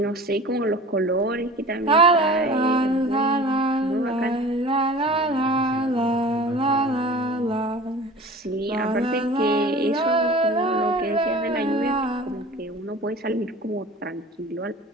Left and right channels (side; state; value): both; normal; correlation 0.41